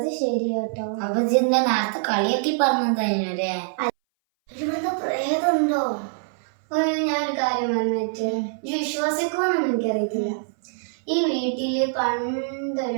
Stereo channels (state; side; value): silent; left; 60 dB below the other